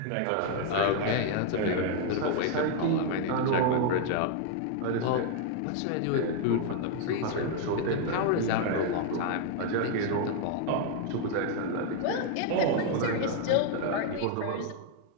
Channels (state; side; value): different; both; correlation 0.00